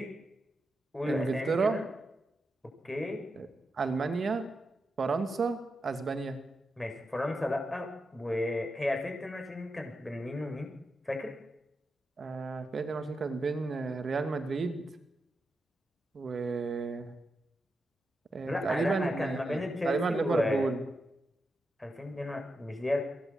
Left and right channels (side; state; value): both; normal; correlation 0.87